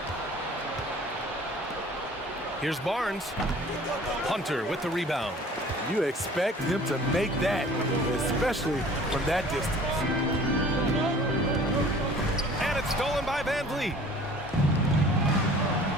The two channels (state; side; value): normal; both; correlation 0.49